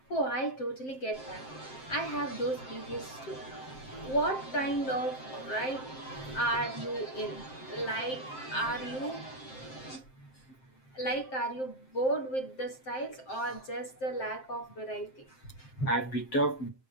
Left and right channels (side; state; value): right; late; 7.6 ms